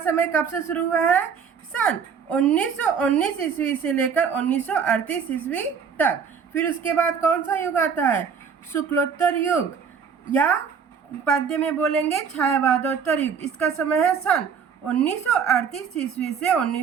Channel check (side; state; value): left; quieter; 6.6 dB